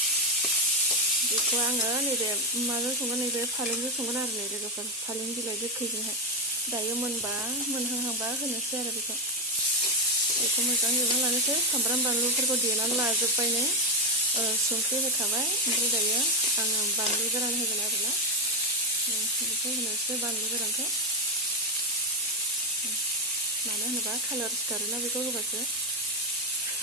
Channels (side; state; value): both; normal; correlation 0.07